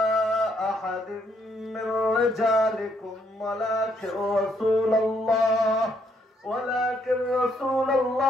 আহাদিন মির রিজালিকুম ওয়ালাকিন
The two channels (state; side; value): normal; both; correlation 0.72